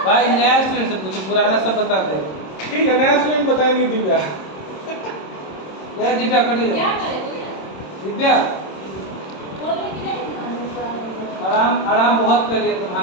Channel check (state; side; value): late; right; 26 ms